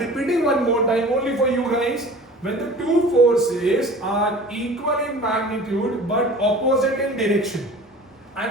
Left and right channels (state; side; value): normal; both; correlation 0.42